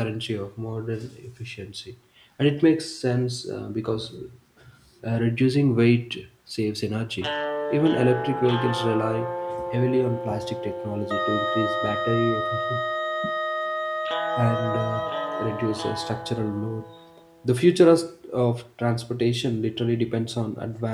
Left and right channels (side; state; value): both; identical; correlation 1.00